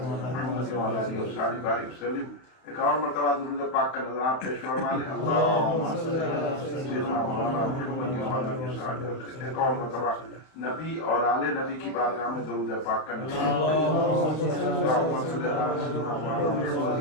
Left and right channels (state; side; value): late; right; 31 ms